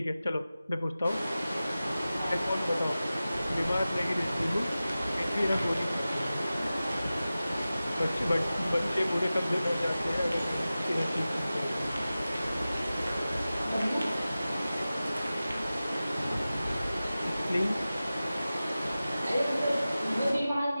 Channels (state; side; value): inverted; both; correlation -0.95